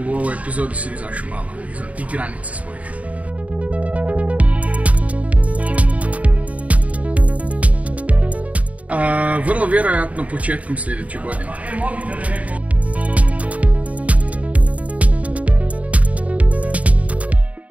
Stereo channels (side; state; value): left; late; 0.068 ms